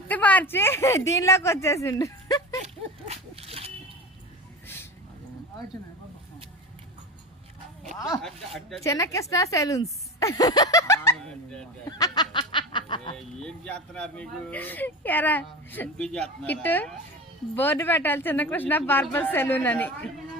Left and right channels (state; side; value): normal; both; correlation 0.29